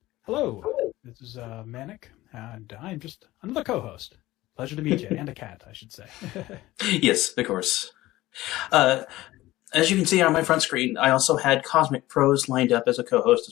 Hello, this is Manic, and I'm just another co-host. Pleasure to meet you, and a cat, I should say. Yes, of course. As you can see on my front screen, I also had Cosmic Pros lined up as a co-host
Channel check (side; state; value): right; quieter; 17.2 dB